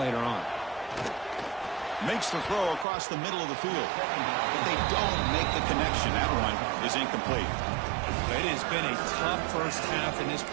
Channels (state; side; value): drops out; left; at 2.9 s